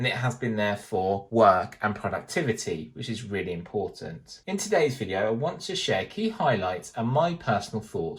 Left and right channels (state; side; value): identical; both; correlation 1.00